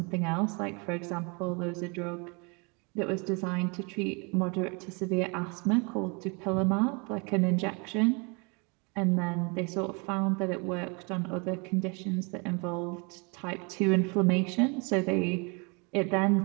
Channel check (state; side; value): quieter; left; 31.6 dB